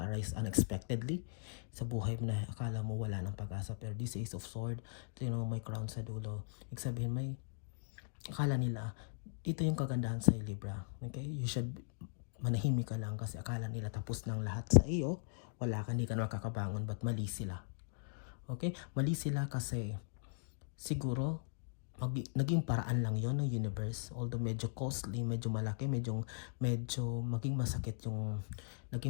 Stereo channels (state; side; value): silent; right; digital silence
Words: unexpectedly sa buhay mo na akala mo wala ng pag-asa. Pero this Ace of Swords, may crown sa dulo. Ibig sabihin, akala nila, ito yung kagandahan sa Libra. Okay? You should manahimik ka lang kasi akala nila tapos ng lahat sa iyo. Wala ka, hindi ka makakabangon, but mali sila. Okay? Mali sila kasi siguro naging paraan lang yon ng universe. Although medyo costly, medyo malaki, medyo maging masakit yung